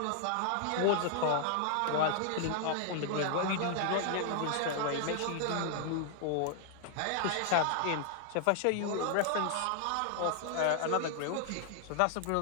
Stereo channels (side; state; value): both; different; correlation 0.00